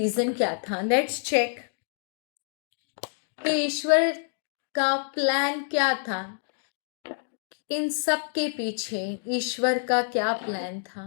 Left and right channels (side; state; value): right; silent; digital silence